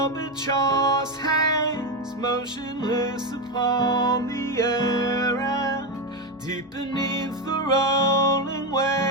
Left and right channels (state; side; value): normal; both; correlation 0.11